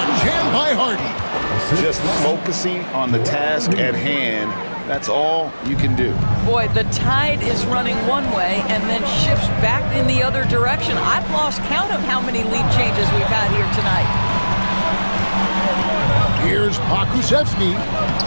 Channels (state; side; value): inverted; both; correlation -1.00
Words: jam by Harden. Just focusing on the task at hand, that's all you can do. Boy, the tide is running one way and then shifts back in the other direction. I've lost count of how many lead changes we've had here tonight. Here's Pakusevsky.